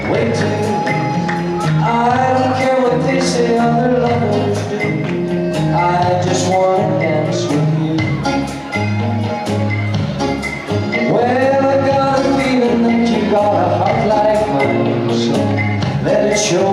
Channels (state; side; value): identical; both; correlation 1.00